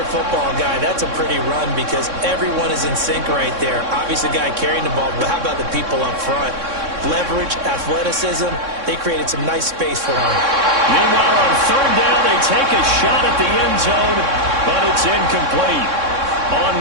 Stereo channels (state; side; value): late; left; 3.6 ms